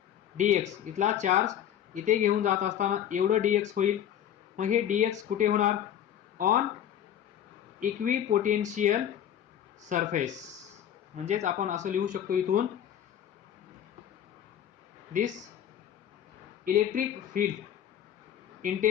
dx. इथला चार्ज इथे घेऊन जात असताना एवढं dx होईल. मग हे dx कुठे होणार, ऑन इक्वी पोटेन्शियल सरफेस. म्हणजेच आपण असं लिहू शकतो इथून, this electric field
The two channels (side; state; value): right; quieter; 10.1 dB